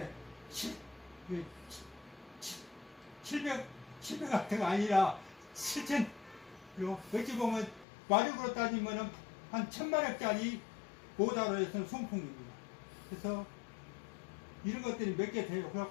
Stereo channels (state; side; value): drops out; right; at 7.9 s